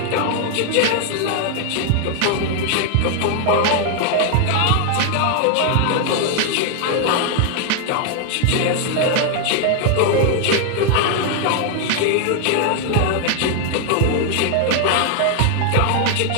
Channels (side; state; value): both; different; correlation 0.00